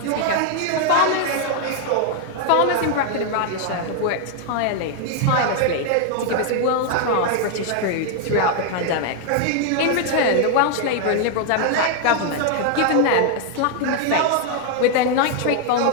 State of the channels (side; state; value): both; different; correlation 0.00